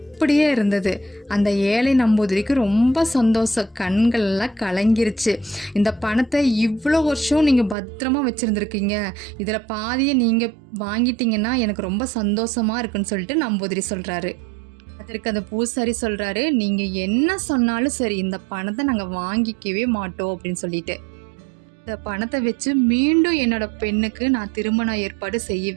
அப்படியே இருந்தது. அந்த ஏழை நம்பூதிரிக்கு ரொம்ப சந்தோஷம், கண்கள்லாம் கலங்கிருச்சு. இந்த பணத்தை இவ்வளோ வருஷம் நீங்கள் பத்திரமா வச்சுருந்துருக்கீங்க, இதில் பாதியை நீங்கள் வாங்கிட்டீங்கன்னா எனக்கு ரொம்ப சந்தோஷமாக இருக்குன்னு சொல்லிட்டு நம்பூதிரி சொல்கிறாரு. அதற்கு அந்த பூசாரி சொல்கிறாரு, நீங்கள் என்ன சொன்னாலும் சரி, இந்த பணத்தை நாங்கள் வாங்கிக்கவே மாட்டோம் அப்படின்னு சொல்லிட்டு. இந்த பணத்தை வச்சு மீண்டும் என்னோட பெண்ணுக்கு நான் திருமண ஏற்பாடு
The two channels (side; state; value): left; drops out; at 7.8 s